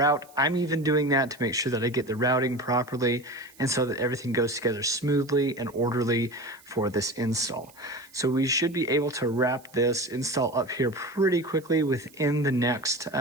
I'm even doing that to make sure that I get the routing properly and so that everything goes together smoothly and orderly for this install. So we should be able to wrap this install up here pretty quickly within the next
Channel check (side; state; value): right; noise; hiss, 26 dB below the sound